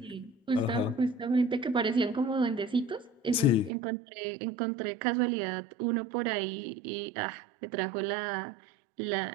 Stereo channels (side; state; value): left; drops out; at 3.7 s